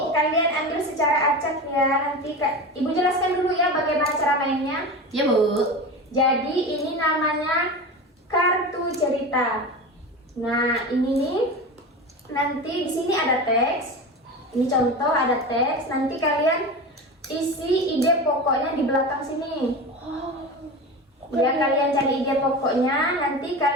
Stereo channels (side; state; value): both; normal; correlation 0.27